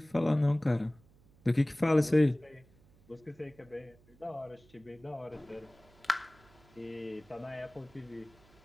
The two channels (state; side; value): noise; right; hum, 28 dB below the sound